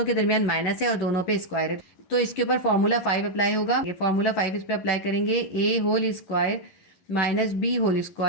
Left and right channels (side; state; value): right; late; 11 ms